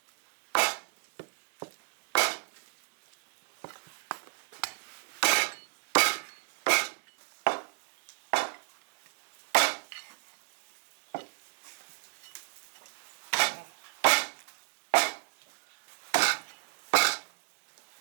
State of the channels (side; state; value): left; silent; digital silence